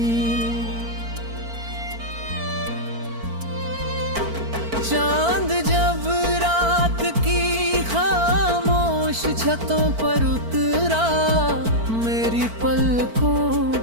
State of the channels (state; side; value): late; left; 4.5 ms